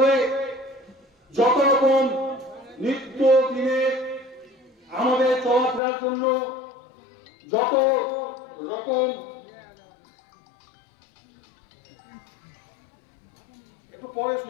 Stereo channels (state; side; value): drops out; right; at 5.8 s